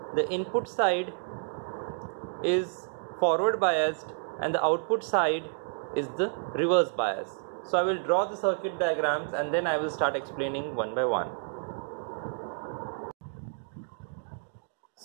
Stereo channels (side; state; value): left; silent; digital silence